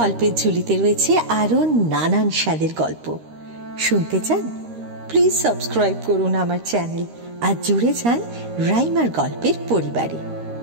ঝুলিতে রয়েছে আরো নানান স্বাদের গল্প। শুনতে চান? প্লিজ সাবস্ক্রাইব করুন আমার চ্যানেল আর জুড়ে যান রাইমার গল্পের পরিবারে।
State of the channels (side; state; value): left; late; 13 ms